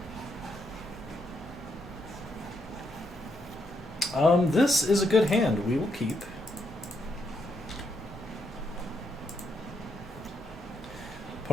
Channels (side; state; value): both; normal; correlation 0.78